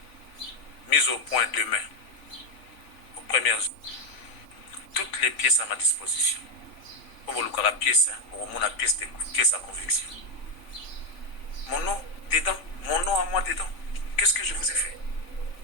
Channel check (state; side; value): late; right; 3.5 ms